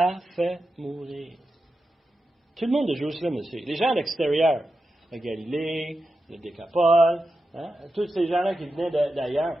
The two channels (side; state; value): both; normal; correlation 0.90